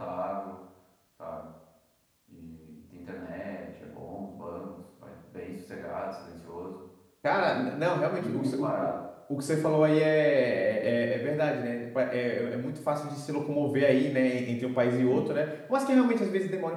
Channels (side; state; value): both; identical; correlation 1.00